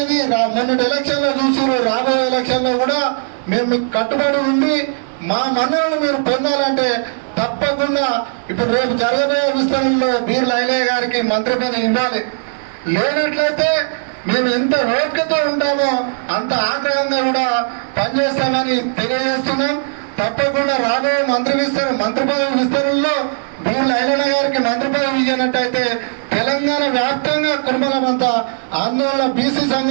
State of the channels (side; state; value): left; silent; digital silence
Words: మొన్నటి ఎలక్షన్లో చూసారు. రాబోయే ఎలక్షన్లో కూడా మేము మీకు కట్టుబడి ఉండి మా మన్నలను మీరు పొందాలంటే తప్పకుండా ఇప్పుడు రేపు జరగబోయే విస్తరణలో బీర్ల ఐలయ్య గారికి మంత్రి పదవి ఇవ్వాలి. లేనట్లయితే మేము ఎంత ఓపికతో ఉంటామో అంత ఆగ్రహంగా కూడా పనిచేస్తామని తెలియజేస్తున్నాం. తప్పకుండా రాబోయే మంత్రి పదవి విస్తరణలో బీర్ల ఐలయ్య గారికి మంత్రి పదవి ఇచ్చినట్టయితే తెలంగాణ వ్యాప్తంగా కుర్మలమంతా ఆందోళన బీసీ